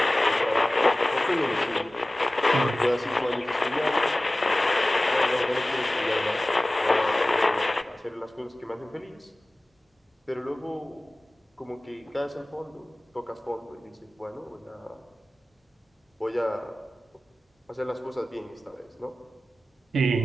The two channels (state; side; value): normal; both; correlation 0.97